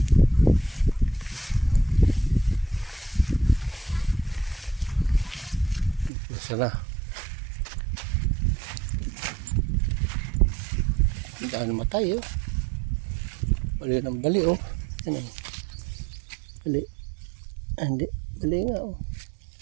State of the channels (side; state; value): left; drops out; at 6.1 s